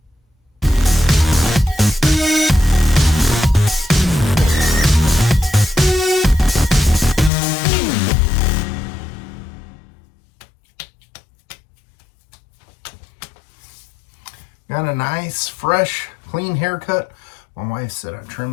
Got a nice, fresh, clean haircut. My wife said I trimmed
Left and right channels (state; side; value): drops out; right; at 7.3 s